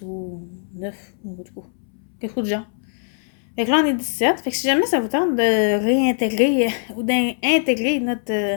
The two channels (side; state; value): right; silent; 64 dB below the other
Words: ou 9, ou quelque chose de genre. Fait que là, on est 17. Fait que si jamais ça vous tente de réintégrer ou d'intégrer